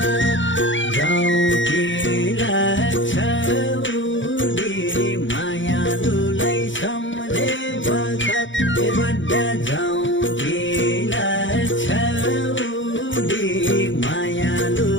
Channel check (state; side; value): late; right; 0.55 ms